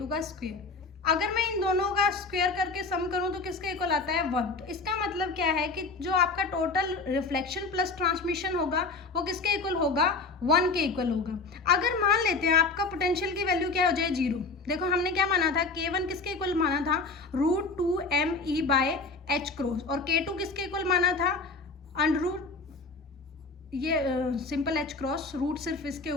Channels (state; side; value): quieter; right; 3.9 dB